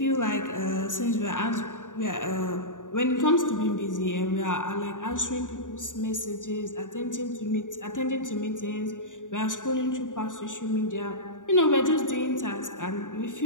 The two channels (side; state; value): right; late; 0.87 ms